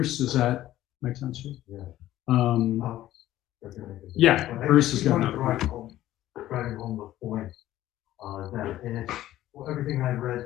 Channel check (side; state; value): right; quieter; 14.1 dB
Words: does that make sense to you? Yeah. Yeah, Bruce is going to driving home the point that, and it's everything I